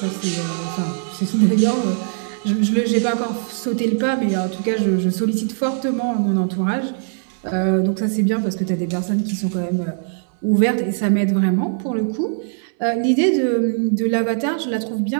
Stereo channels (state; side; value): silent; left; 64 dB below the other